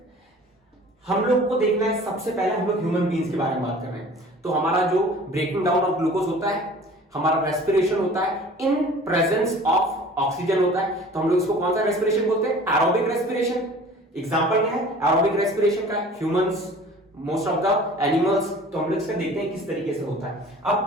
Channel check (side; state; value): both; normal; correlation 0.45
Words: हम लोग को देखना है, सबसे पहले हम लोग ह्यूमन बीइंग्स के बारे में बात कर रहे हैं। तो हमारा जो ब्रेकिंग डाउन ऑफ ग्लूकोज होता है, हमारा रेस्पिरेशन होता है इन प्रेजेंस ऑफ ऑक्सीजन होता है। तो हम लोग इसको कौन सा रेस्पिरेशन बोलते हैं? Aerobic respiration. एग्जांपल क्या है एरोबिक रेस्पिरेशन का? Humans, most of the animals. तो हम लोग इसका देखते हैं किस तरीके से होता है।